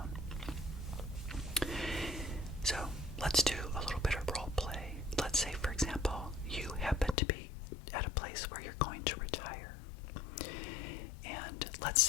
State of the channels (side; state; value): right; drops out; at 7.2 s